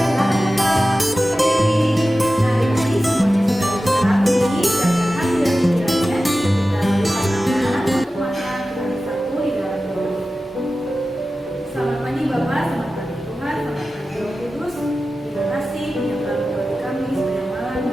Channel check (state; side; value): normal; both; correlation 0.94